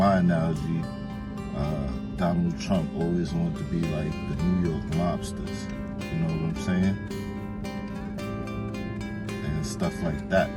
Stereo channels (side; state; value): both; identical; correlation 1.00